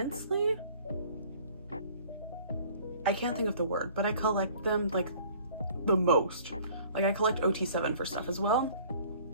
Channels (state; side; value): inverted; both; correlation -0.52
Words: I can't think of the word, but I collect them like the most. Like, I collect OT7 for stuff as well.